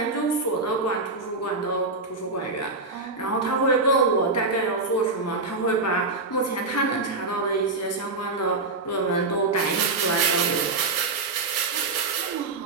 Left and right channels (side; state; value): left; quieter; 3.6 dB